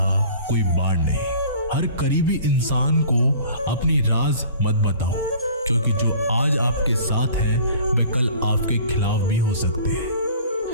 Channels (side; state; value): both; inverted; correlation -0.46